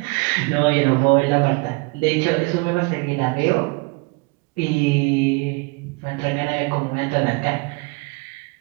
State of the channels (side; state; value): left; quieter; 27.5 dB